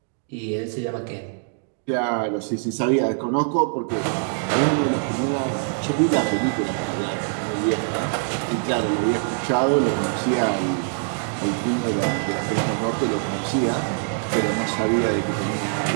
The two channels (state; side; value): silent; left; 63 dB below the other